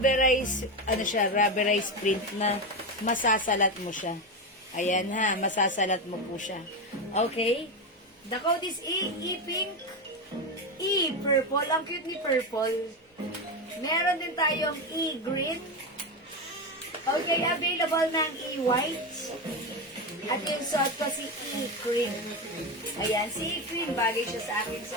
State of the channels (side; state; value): both; normal; correlation 0.15